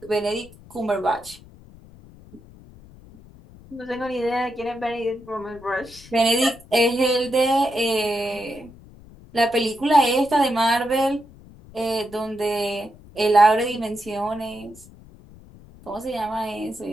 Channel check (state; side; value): noise; left; rumble, 22 dB below the sound